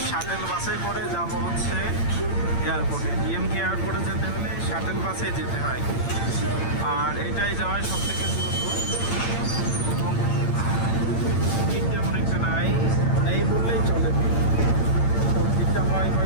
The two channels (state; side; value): late; right; 8.8 ms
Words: শাটেল বাসে করে যাব হচ্ছে এয়ারপোর্টে, ডিএমকে এয়ারপোর্টে যেতে হলে শাটেল বাসে যেতে হয়, আর এটাই যাওয়ায় সব থেকে দ্রুত এবং ভিড় তেমন একটা নেই বললেই চলে। তো ভিড়টা হয়